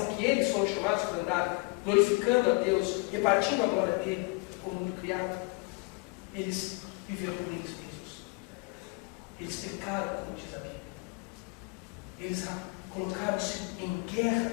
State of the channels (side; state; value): right; quieter; 27.9 dB